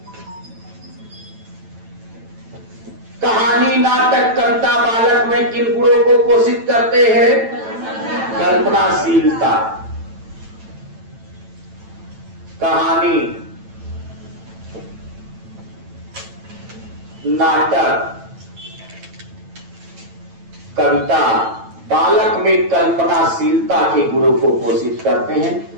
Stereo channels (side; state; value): left; late; 9.0 ms